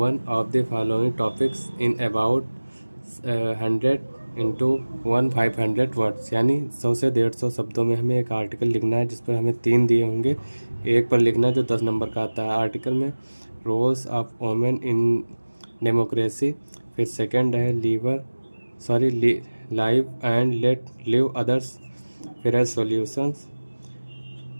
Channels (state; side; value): inverted; both; correlation -1.00